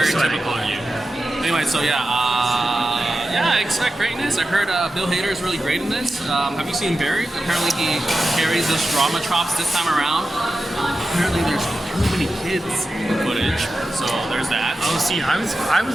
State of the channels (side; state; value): both; normal; correlation 0.92